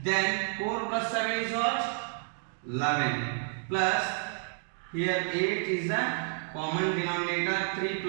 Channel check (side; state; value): left; silent; digital silence